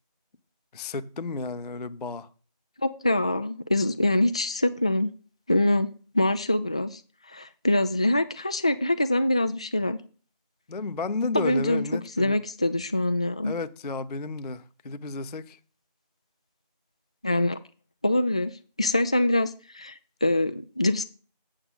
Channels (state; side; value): inverted; both; correlation -0.85